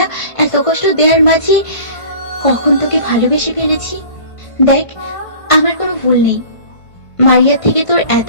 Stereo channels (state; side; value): late; right; 1.5 ms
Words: এত কষ্ট দেওয়ার মাঝে কখন তোকে ভালোবেসে ফেলেছি। দেখ, আমার কোনো ভুল নেই। মারিয়ার থেকে তোর এত